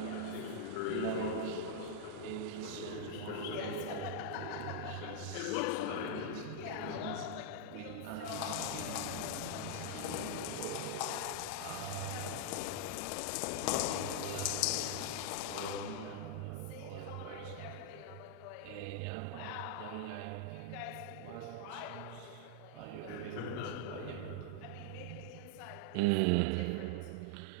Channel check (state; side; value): different; both; correlation 0.00